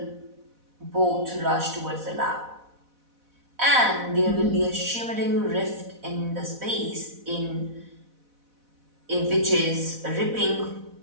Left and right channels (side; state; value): left; late; 4.1 ms